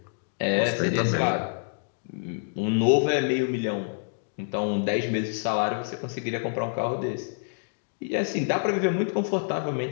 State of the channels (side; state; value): right; silent; digital silence